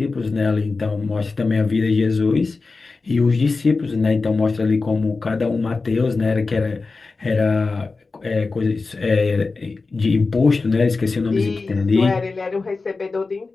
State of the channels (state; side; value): quieter; right; 4.0 dB